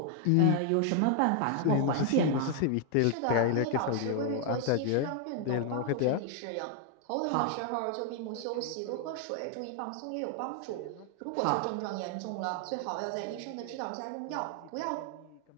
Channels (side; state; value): both; different; correlation 0.00